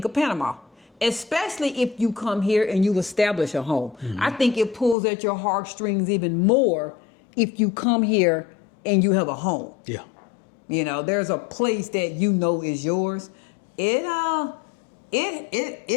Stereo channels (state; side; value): drops out; right; at 5.0 s